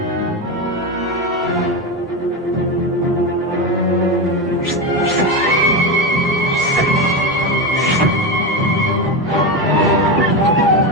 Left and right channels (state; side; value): normal; both; correlation 0.16